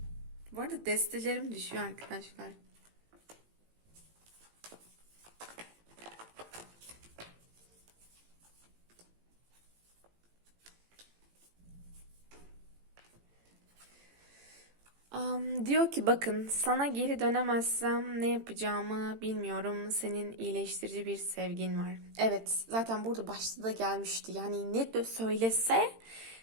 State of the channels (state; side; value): late; left; 18 ms